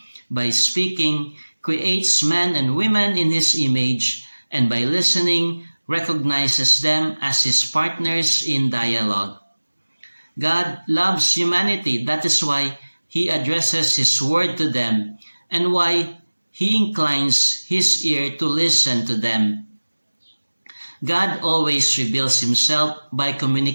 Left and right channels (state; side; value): inverted; both; correlation -1.00